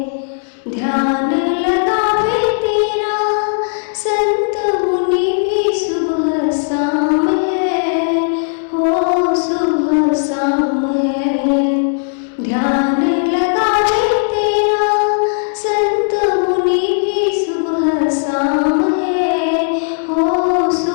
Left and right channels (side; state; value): right; silent; digital silence